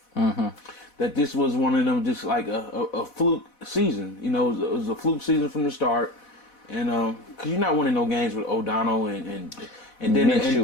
that this was one of them just like a fluke season. It was a fluke season from the start. And cause you're not winning no games with O'Donnell and then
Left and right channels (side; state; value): right; late; 4.1 ms